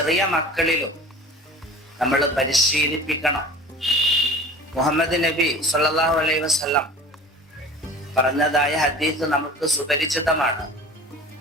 മക്കളിലും നമ്മൾ പരിശീലിപ്പിക്കണം. മുഹമ്മദ് നബി സല്ലല്ലാഹു അലൈഹി വസല്ലം പറഞ്ഞതായ ഹദീസ് നമുക്ക് സുപരിചിതമാണ്.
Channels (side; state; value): both; normal; correlation 0.40